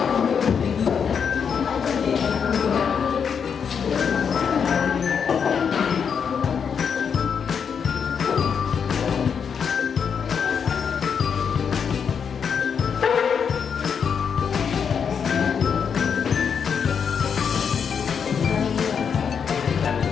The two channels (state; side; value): quieter; right; 6.8 dB